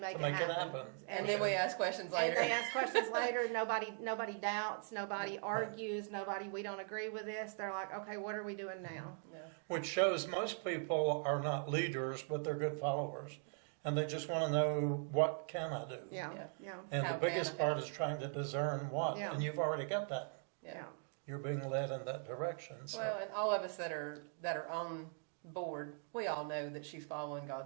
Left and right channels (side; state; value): left; silent; 51 dB below the other